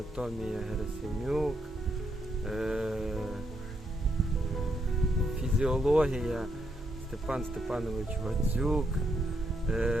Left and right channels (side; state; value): both; normal; correlation 0.78